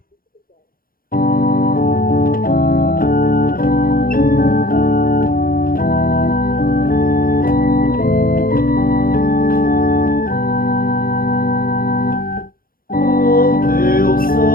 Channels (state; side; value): late; right; 0.42 ms